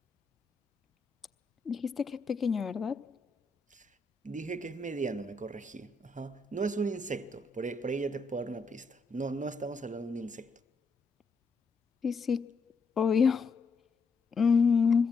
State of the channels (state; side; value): quieter; right; 3.9 dB